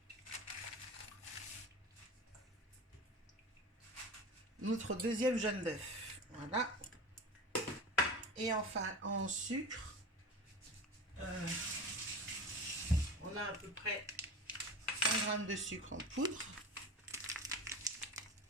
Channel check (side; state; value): both; normal; correlation 0.31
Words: notre deuxième jaune d'œuf. Voilà. Et enfin, en sucre, on a à peu près 100 g de sucre en poudre.